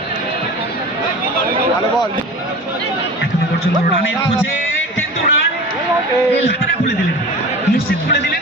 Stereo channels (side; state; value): both; normal; correlation 0.35